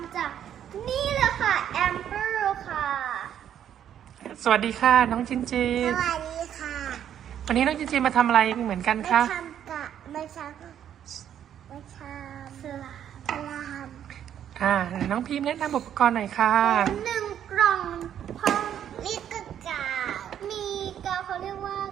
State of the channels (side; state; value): left; quieter; 9.9 dB